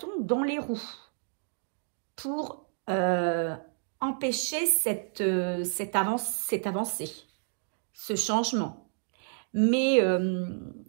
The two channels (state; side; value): silent; left; digital silence